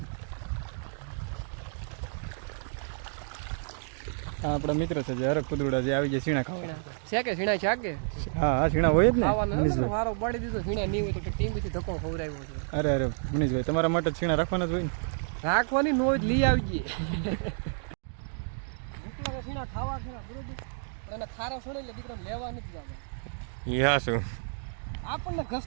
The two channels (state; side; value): silent; left; digital silence